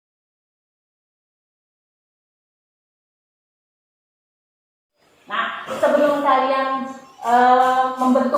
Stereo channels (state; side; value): identical; both; correlation 1.00